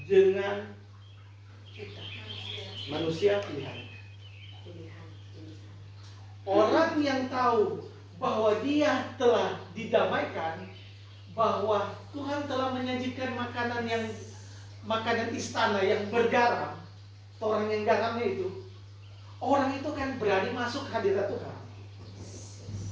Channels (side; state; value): both; identical; correlation 1.00